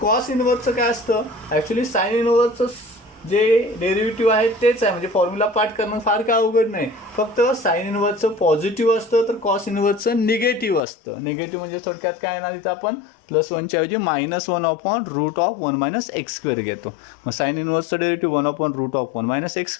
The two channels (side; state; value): right; drops out; at 10.8 s